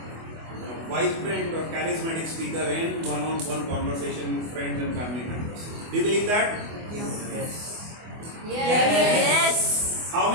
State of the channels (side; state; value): left; late; 24 ms